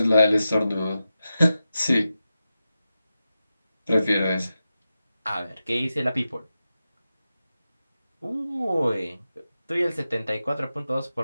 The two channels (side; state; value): both; inverted; correlation -0.91